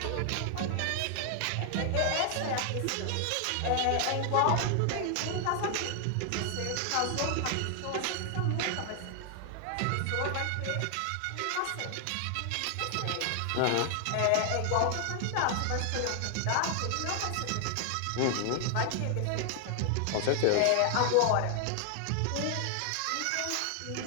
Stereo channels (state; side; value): different; both; correlation 0.00